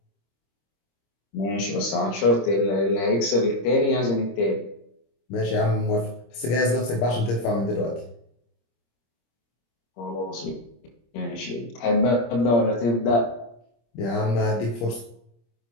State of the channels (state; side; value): late; right; 26 ms